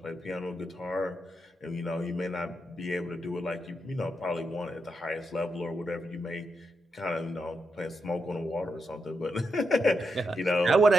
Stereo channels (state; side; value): normal; both; correlation 0.84